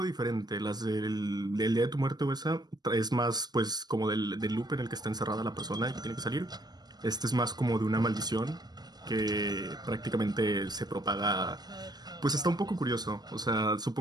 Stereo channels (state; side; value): late; left; 0.19 ms